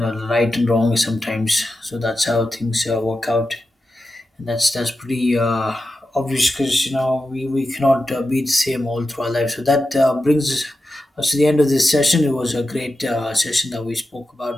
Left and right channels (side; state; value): both; normal; correlation 0.90